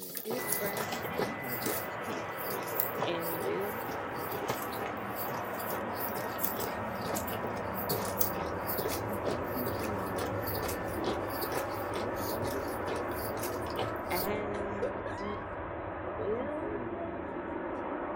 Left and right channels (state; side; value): identical; both; correlation 1.00